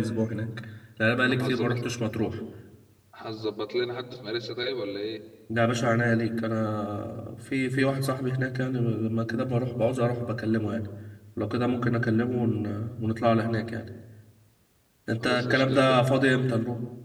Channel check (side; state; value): both; identical; correlation 1.00